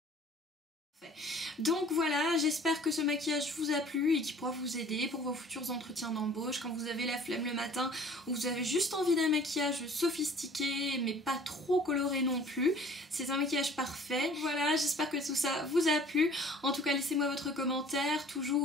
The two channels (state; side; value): normal; both; correlation 0.50